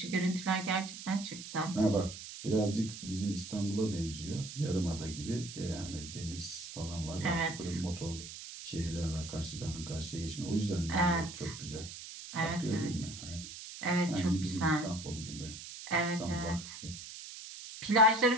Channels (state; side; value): noise; right; hiss, 11 dB below the sound